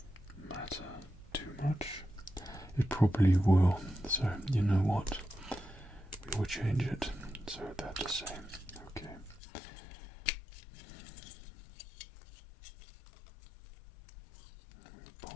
matter too much? It probably will, so you know what? We will change it so they're the same. Okay.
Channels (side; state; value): right; drops out; at 9.4 s